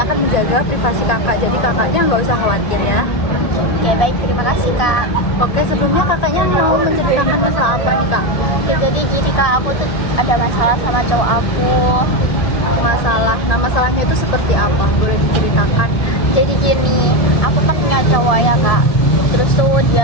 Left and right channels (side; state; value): right; late; 1.7 ms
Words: akan menjaga privasi Kakak, jadi Kakaknya nggak usah khawatir ya. Oke, baik, terima kasih Kak. Oke, sebelumnya Kakaknya mau menceritakan masalah apa nih Kak? Oke, jadi gini Kak, aku tuh ada masalah sama cowok aku. Masalah. Nah, masalahnya itu seperti apa? Boleh diceritakan? Jadi gini, aku kan punya cowok ya Kak. Terus tuh